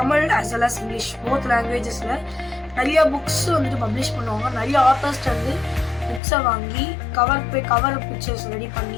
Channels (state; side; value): drops out; right; at 6.2 s